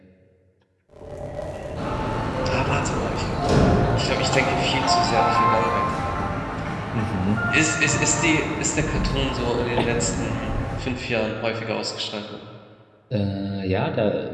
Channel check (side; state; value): both; identical; correlation 1.00